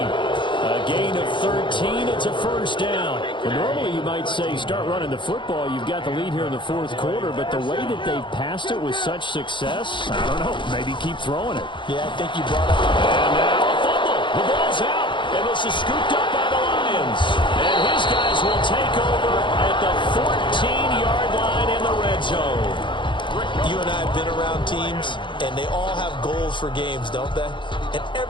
gain of 13, it's a 1st down. Well, normally you might say start running the football. You've got the lead here in the 4th quarter, but the way that they've passed it with such success, I don't know, maybe keep throwing it. Yeah, I think you brought up. And now a fumble. The ball's out, and this is scooped up by the Lions. And his guys will take over at the 14-yard line in the red zone. You and I have been around teams, and they all have goals for games, don't they? And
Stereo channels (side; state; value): right; late; 0.23 ms